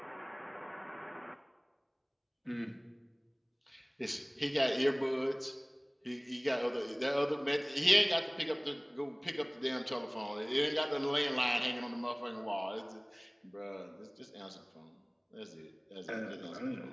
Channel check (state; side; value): identical; both; correlation 1.00